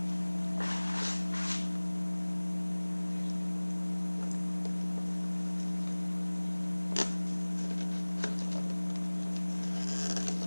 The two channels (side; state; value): both; inverted; correlation -1.00